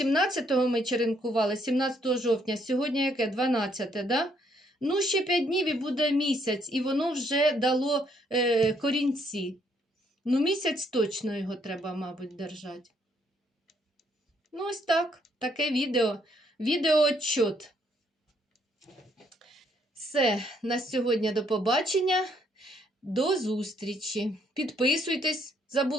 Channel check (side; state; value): both; normal; correlation 0.70